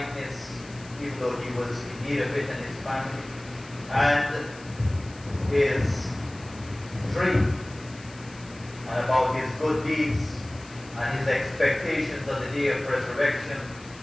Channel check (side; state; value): left; noise; hiss, 21 dB below the sound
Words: even though he was in need of it and his family, and his dream and about his good deeds and his expectations on the day of resurrection